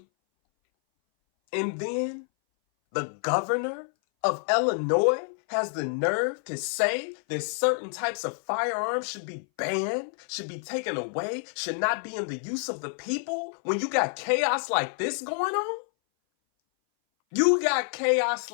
And then the governor of Illinois has the nerve to say that certain types of firearms should be banned, should be taken away, should not be in the use of the people when you got chaos like this going on? You got chaos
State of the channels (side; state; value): right; silent; 58 dB below the other